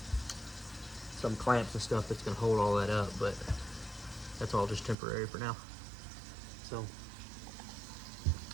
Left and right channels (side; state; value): left; drops out; at 5.0 s